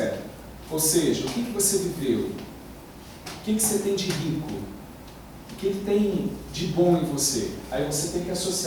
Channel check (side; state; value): both; identical; correlation 1.00